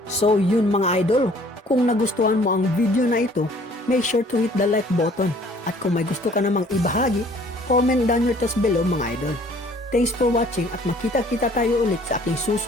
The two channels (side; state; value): both; normal; correlation 0.56